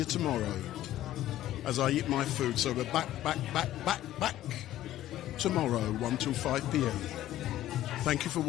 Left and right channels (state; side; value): quieter; right; 13.5 dB